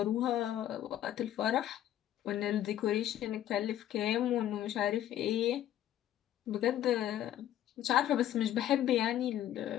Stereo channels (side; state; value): right; quieter; 11.9 dB